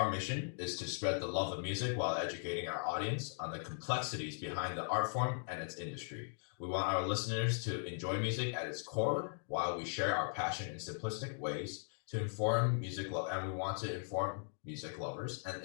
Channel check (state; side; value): silent; right; digital silence